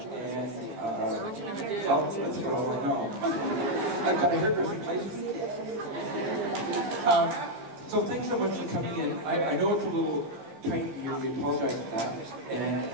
well, let's go, no. I've got a hairdressing license. So thanks so much for coming in. I know it's a little tight here, we apologize for that. And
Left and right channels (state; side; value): late; left; 14 ms